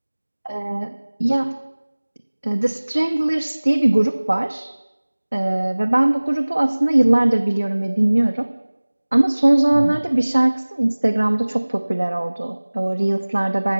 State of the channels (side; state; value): both; inverted; correlation -1.00